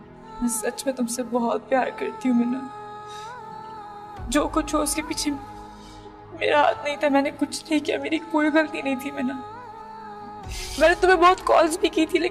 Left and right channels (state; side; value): identical; both; correlation 1.00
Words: मैं सच में तुमसे बहुत प्यार करती हूँ मीना। जो कुछ हो उसके पीछे मेरा हाथ नहीं था, मैंने कुछ नहीं किया, मेरी कोई गलती नहीं थी मीना। मैंने तुम्हें बहुत कॉल्स भी की थी